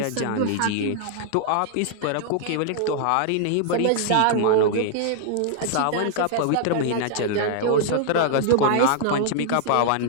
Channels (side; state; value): both; different; correlation -0.01